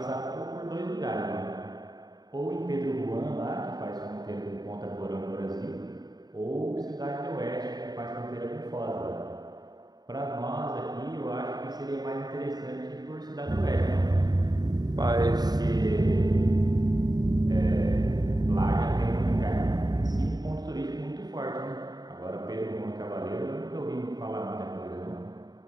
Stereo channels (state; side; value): late; left; 0.20 ms